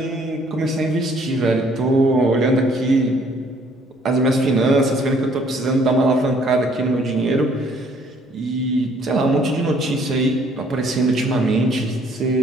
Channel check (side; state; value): both; normal; correlation 0.61